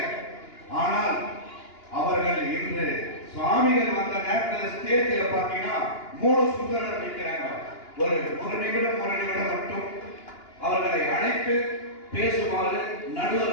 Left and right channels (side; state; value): right; late; 2.9 ms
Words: ஆனால் அவர்கள் இன்று சுவாமிகள் வந்த நேரத்தில் ஸ்டேஜில் பார்த்தீங்கன்னா 3 சுந்தரர் நிற்கிறாங்க. ஒரு நிமிடம் மட்டும் அவர்களை அழைத்து பேசுமாறு